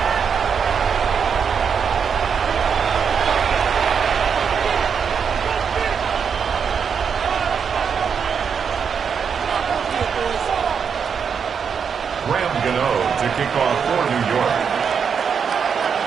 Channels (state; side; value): quieter; left; 6.7 dB